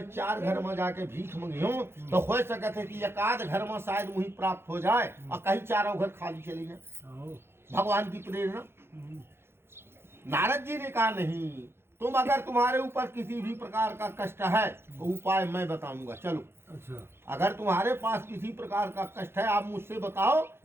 4 घर में जाके भीख मंगियो तो हो सकता है कि एकाध घर में शायद वही प्राप्त हो जाए और कहीं 4 घर खाली चले जाए। भगवान की प्रेरणा। नारद जी ने कहा, नहीं, तुम अगर तुम्हारे ऊपर किसी भी प्रकार का कष्ट है तो उपाय मैं बताऊंगा, चलो। अच्छा, अगर तुम्हारे पास किसी प्रकार का कष्ट है आप मुझसे बताओ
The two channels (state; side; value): late; left; 0.12 ms